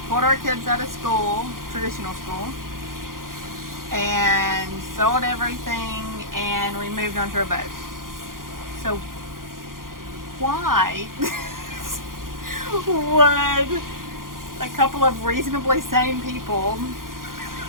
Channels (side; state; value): left; late; 0.91 ms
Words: pulled our kids out of school, traditional school, and sold everything, and we moved onto a boat. So why would a couple of reasonably sane people